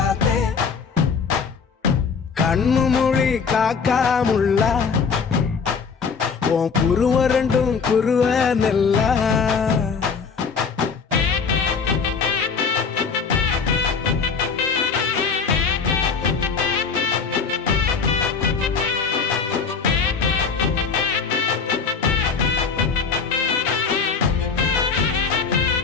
கண்ணு மொழி காக்காமுள்ள உன் குருவ ரெண்டும் குருவ நெல்லா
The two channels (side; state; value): right; quieter; 5.5 dB